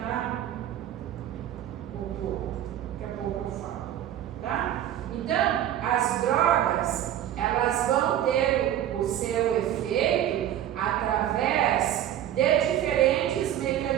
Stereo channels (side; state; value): left; quieter; 11.5 dB